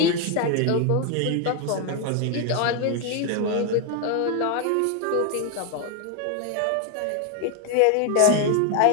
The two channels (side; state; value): both; different; correlation 0.01